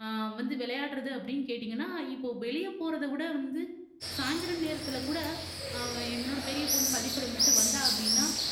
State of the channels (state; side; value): identical; both; correlation 1.00